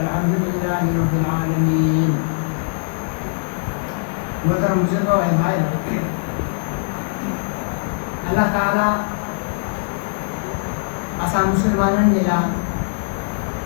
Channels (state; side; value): silent; right; digital silence